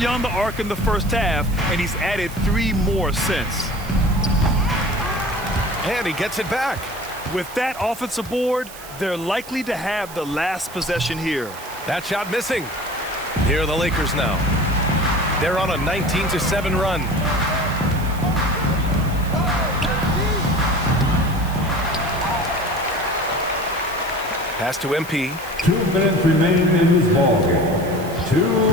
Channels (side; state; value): right; noise; hiss, 16 dB below the sound